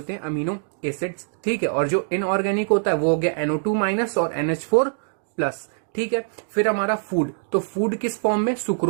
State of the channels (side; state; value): left; silent; digital silence